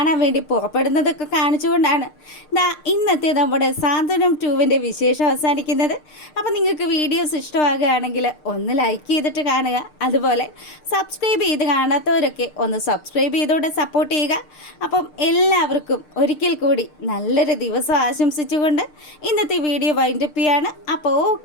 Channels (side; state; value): right; late; 6.6 ms